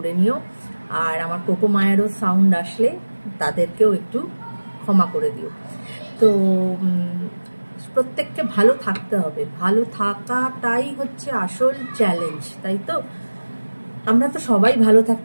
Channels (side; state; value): both; inverted; correlation -1.00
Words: নিও। আর আমার কোকো মায়েরও সাউন্ড আসলে তাদেরকেও একটু ক্ষমা করে দিও। তো প্রত্যেককে ভালো থাকতে হবে, ভালো থাকাটাই হচ্ছে আসল চ্যালেঞ্জ, তাই তো? আমরা তো সবাই ভালো